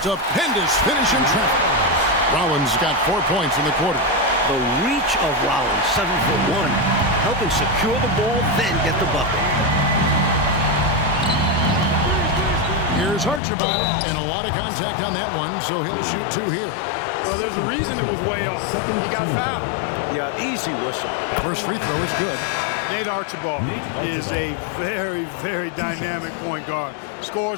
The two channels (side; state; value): right; drops out; at 13.4 s